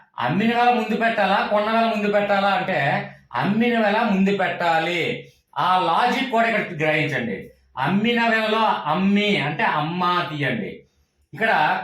అమ్మిన వేల ముందు పెట్టాలా కొన్న వేల ముందు పెట్టాలా అంటే అమ్మిన వేల ముందు పెట్టాలి. ఆ లాజిక్ కూడా ఇక్కడ గ్రహించండి. అమ్మిన వేలలో అమ్మి అంటే అమ్మ తీయండి, ఇక్కడ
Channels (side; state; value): both; identical; correlation 1.00